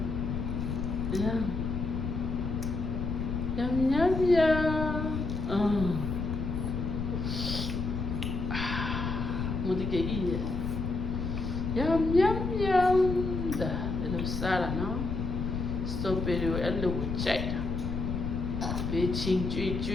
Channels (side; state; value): left; noise; rumble, 2 dB below the sound